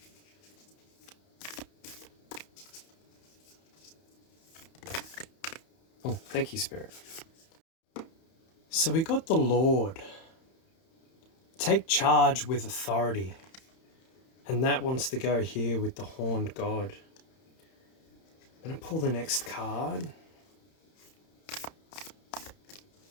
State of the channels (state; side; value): late; right; 31 ms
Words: Oh, thank you, Spirit. So we got the Lord. Take charge with authority. And that wants to go here with the Horned God. I'm going to pull the next card.